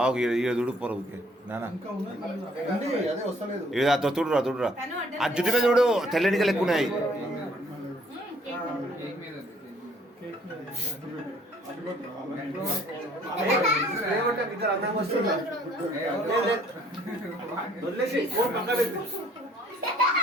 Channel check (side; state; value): both; normal; correlation 0.60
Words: చూడు పొరవుకి నానా తుడురా తుడురా ఆ జుట్టు మీద చూడు తెల్లనికలు ఎక్కువ ఉన్నాయి.